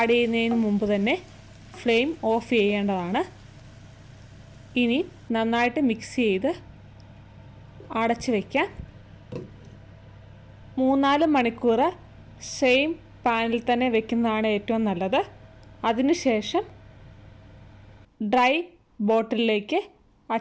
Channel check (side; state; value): both; identical; correlation 1.00